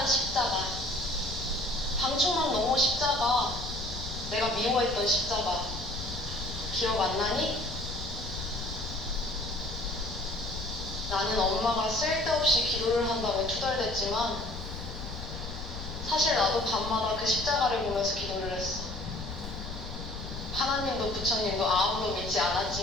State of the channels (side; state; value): left; noise; rumble, 9 dB below the sound